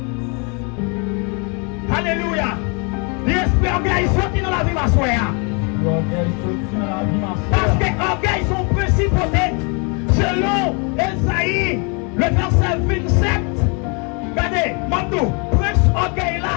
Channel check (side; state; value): right; quieter; 34.0 dB